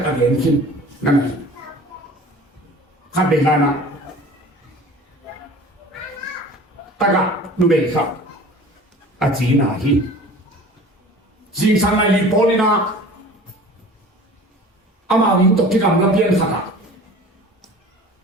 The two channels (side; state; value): both; normal; correlation 0.43